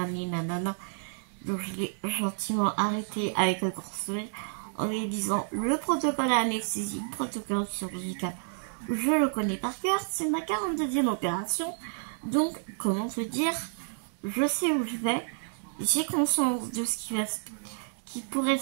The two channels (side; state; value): left; silent; digital silence